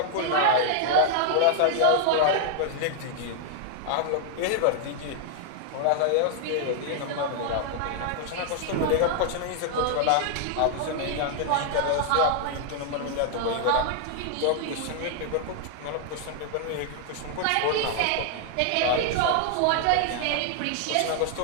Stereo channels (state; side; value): different; both; correlation 0.00